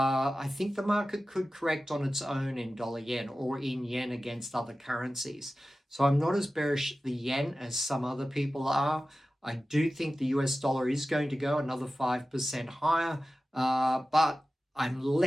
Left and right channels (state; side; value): normal; both; correlation 0.95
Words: think the market could correct on its own in dollar yen or in yen against other currencies. So I'm not as bearish the yen as some other people are. I do think the US dollar is going to go another 5% higher, but I'm